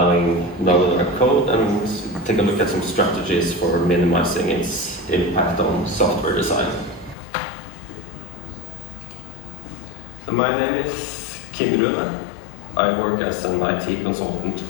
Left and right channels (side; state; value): right; drops out; at 7.2 s